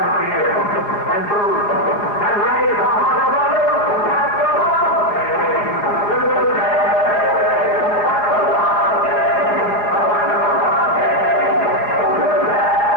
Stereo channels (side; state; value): right; late; 4.8 ms